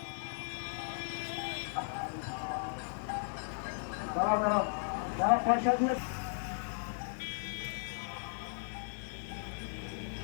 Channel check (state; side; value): silent; right; digital silence